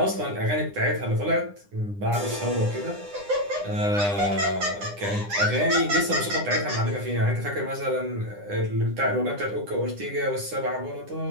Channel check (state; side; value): late; left; 9.9 ms